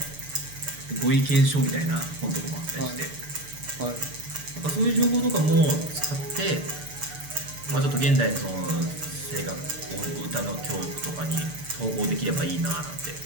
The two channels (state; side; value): late; left; 6.8 ms